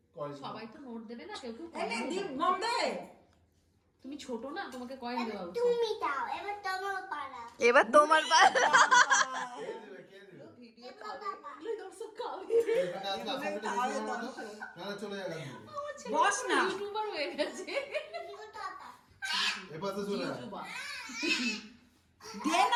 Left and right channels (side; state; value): both; identical; correlation 1.00